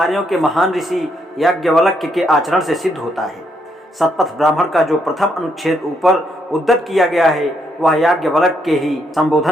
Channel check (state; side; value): normal; both; correlation 0.75